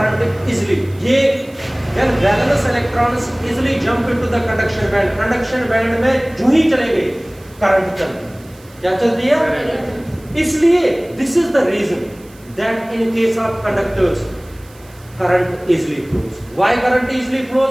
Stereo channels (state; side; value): noise; right; hiss, 26 dB below the sound